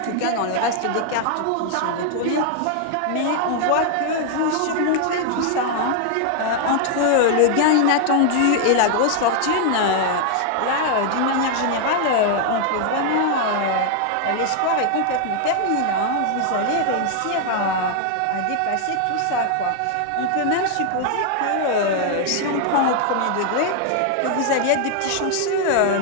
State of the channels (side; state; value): both; different; correlation 0.00